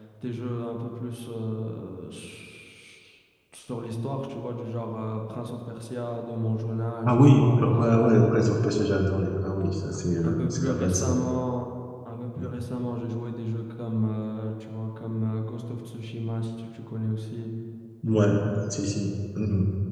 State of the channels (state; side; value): identical; both; correlation 1.00